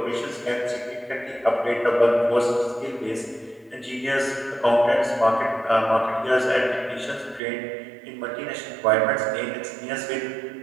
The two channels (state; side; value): drops out; left; at 7.4 s